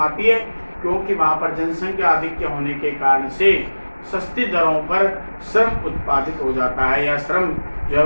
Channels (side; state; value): both; inverted; correlation -1.00